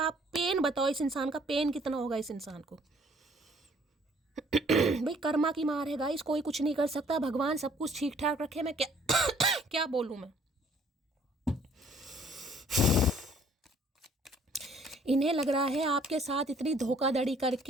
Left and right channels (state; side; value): normal; both; correlation 0.60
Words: पेन बताओ, इस इंसान का पेन कितना होगा इस इंसान को। भाई कर्मा की मार है गाइस, कोई कुछ नहीं कर सकता, भगवान सब कुछ ठीक ठाक रखे। मैं क्या क्या बोलूं मैं। इन्हें लग रहा है आपके साथ इतनी धोखाधड़ी